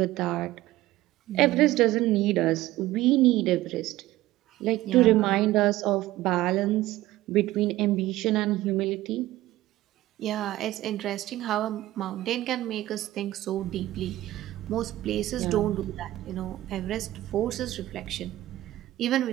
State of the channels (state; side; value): quieter; left; 16.1 dB